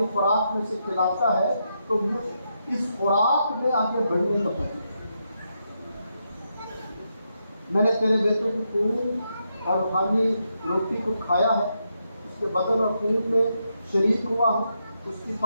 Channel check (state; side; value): inverted; both; correlation -0.82